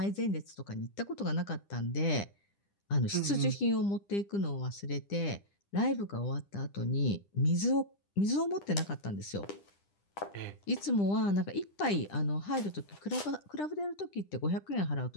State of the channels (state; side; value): late; right; 10 ms